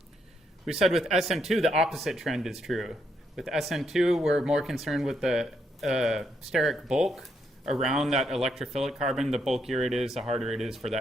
We said with SN2, the opposite trend is true. With SN2, we're more concerned with the steric bulk around that electrophilic carbon. The bulkier it is, the harder it is for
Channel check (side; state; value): both; normal; correlation 0.77